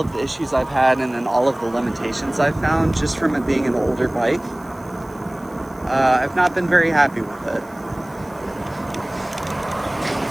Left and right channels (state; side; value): noise; right; hiss, 28 dB below the sound